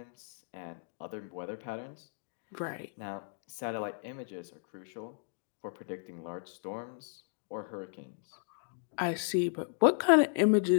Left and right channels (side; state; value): right; silent; digital silence